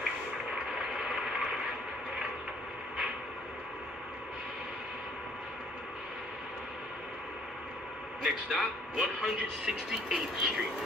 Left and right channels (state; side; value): normal; both; correlation 0.60